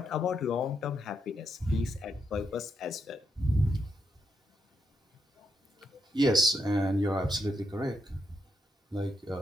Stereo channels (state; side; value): normal; both; correlation 0.81